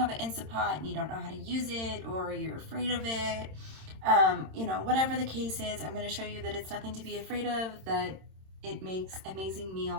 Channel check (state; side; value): late; left; 26 ms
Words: an Instapot and you don't know how to use it or you're afraid of it. Whatever the case is, I'm going to show you that it's nothing to be afraid of, that it makes amazing